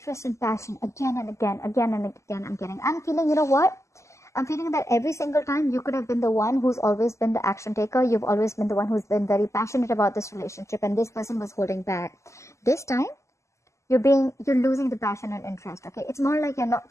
and passion again and again. I'm feeling, you know what? I'm feeling that every single time you could have been the one who's always been the action taker. You've always been the one who's been very passionate about this relationship, and this person was holding back. This time, you're losing the passion and interest, okay? It's more like you're not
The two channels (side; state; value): right; late; 0.14 ms